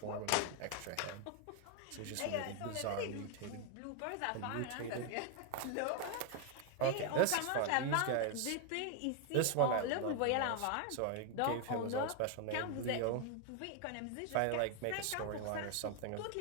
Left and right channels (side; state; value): both; different; correlation 0.01